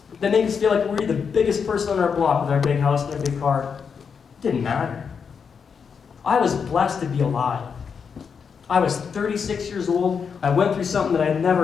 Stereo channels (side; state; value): right; quieter; 6.3 dB